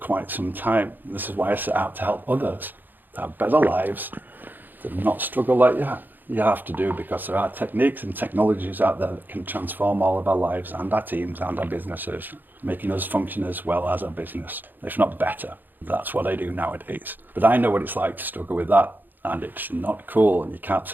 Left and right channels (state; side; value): late; left; 0.089 ms